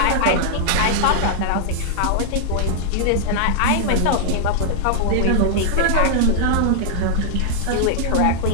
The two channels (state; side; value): different; both; correlation -0.01